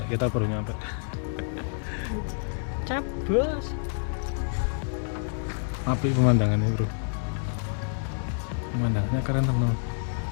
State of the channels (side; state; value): right; silent; 59 dB below the other